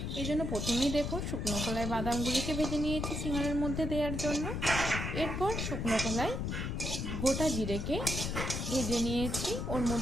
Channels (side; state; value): left; noise; rumble, 2 dB below the sound